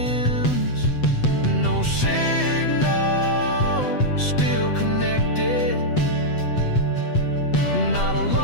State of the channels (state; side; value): late; right; 7.8 ms